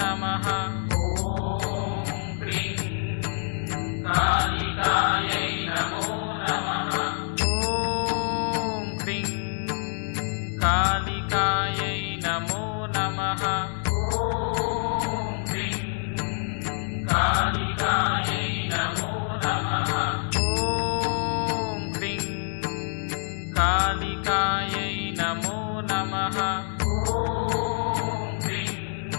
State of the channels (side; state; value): right; silent; 61 dB below the other